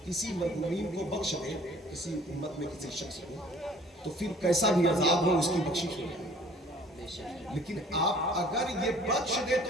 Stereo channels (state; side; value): normal; both; correlation 0.52